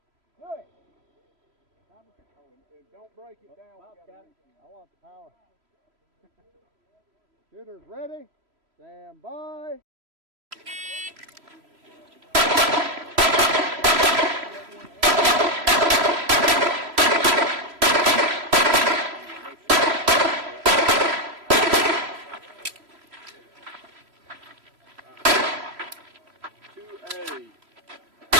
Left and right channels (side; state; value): left; late; 3.0 ms